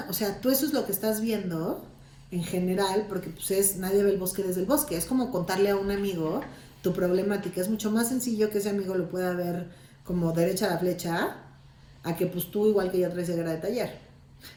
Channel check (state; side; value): identical; both; correlation 1.00